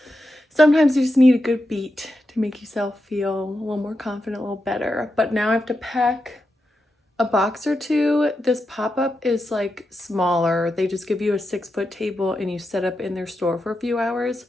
Sometimes you just need a good beat to make yourself feel a little more confident, a little better. But now I have to pack a box or 2. This pop-up is like smaller. They just give you a 6-foot table and you set up in their store for a few hours.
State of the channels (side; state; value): both; normal; correlation 0.88